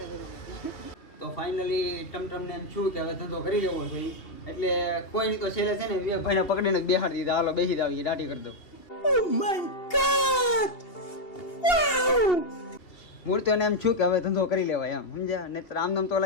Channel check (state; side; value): late; right; 2.8 ms